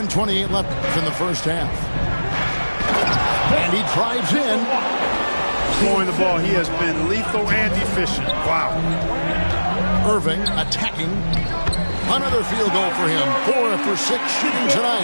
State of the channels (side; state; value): both; inverted; correlation -1.00